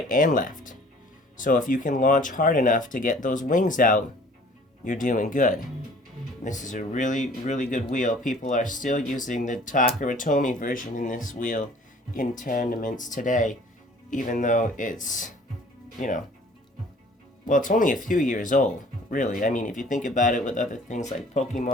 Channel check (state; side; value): normal; both; correlation 0.52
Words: and left. So if you can launch hard enough to get those wings out, you're doing good. This is a really, really good wheel. People are still using the Takaratomi version in this wheel in tournaments today, even though it's, well, it's only a few years old, really. I mean, if you think about it with other things like